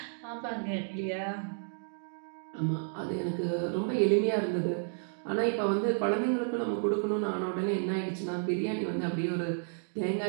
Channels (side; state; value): left; silent; digital silence